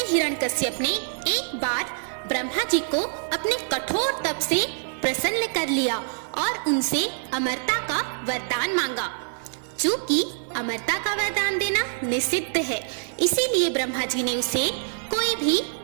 हिरण्यकश्यप ने एक बार ब्रह्मा जी को अपने कठोर तप से प्रसन्न कर लिया और उनसे अमरता का वरदान मांगा। चूंकि अमरता का वरदान देना निषिद्ध है, इसीलिए ब्रह्मा जी ने उसे कोई भी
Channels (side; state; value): left; silent; digital silence